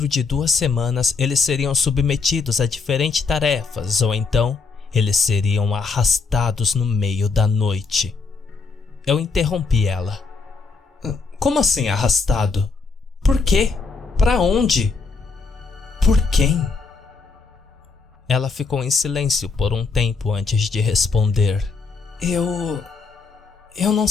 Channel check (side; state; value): right; quieter; 4.6 dB